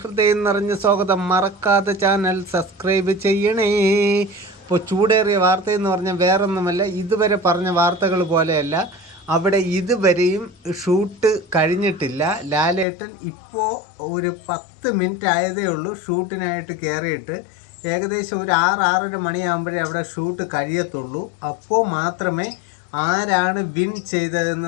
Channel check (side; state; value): right; drops out; at 12.9 s